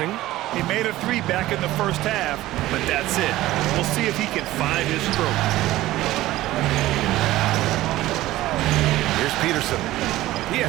He made a 3 back in the first half, but that's it. We'll see if he can find his stroke. Here's Peterson. He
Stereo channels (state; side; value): quieter; left; 16.2 dB